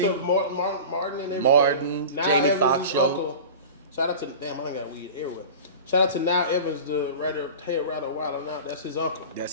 Yusuf Martin and everything. Martin, Now Jamie Evans' Foxx show. uncle. Shout out to damn, I got weed everywhere. Shout out to Now Evans, the head writer Wild Now. That's his uncle.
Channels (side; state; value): both; inverted; correlation -0.34